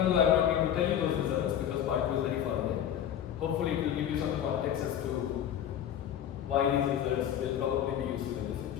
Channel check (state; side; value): quieter; right; 10.0 dB